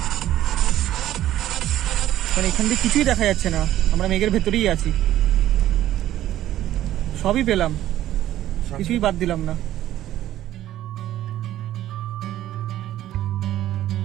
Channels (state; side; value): quieter; left; 13.2 dB